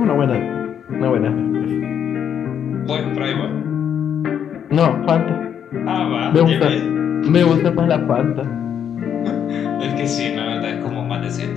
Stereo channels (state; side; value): quieter; right; 8.7 dB